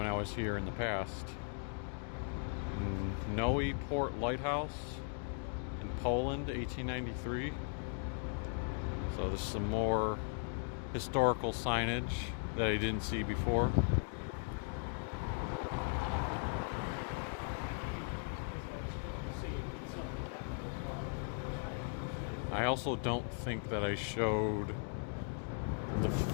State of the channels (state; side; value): silent; right; 52 dB below the other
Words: I was here in the past. Noe Port Lighthouse in Poland, 1893. So this is some more historical signage that I didn't see before. I also don't think that I showed the